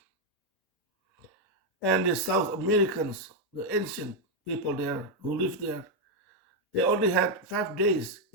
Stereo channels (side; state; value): both; normal; correlation 0.01